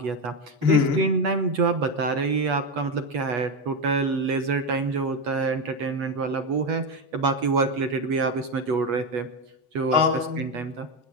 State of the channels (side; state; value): left; late; 8.3 ms